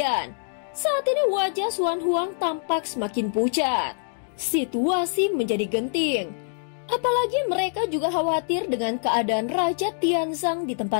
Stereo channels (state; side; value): silent; right; digital silence